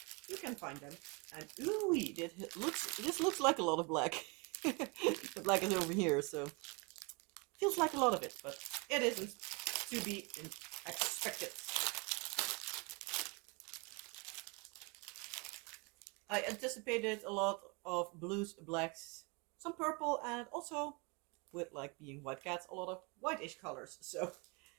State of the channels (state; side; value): quieter; left; 30.6 dB